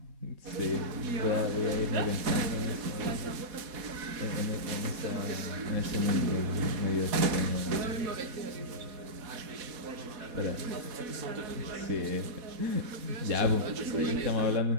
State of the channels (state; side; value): late; left; 4.1 ms